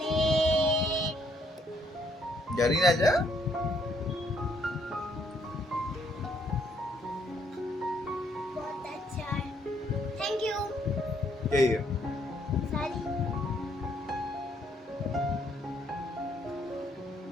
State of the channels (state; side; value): normal; both; correlation 0.69